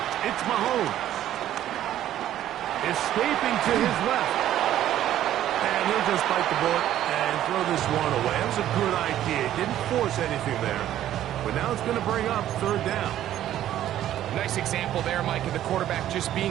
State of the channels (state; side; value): quieter; left; 12.2 dB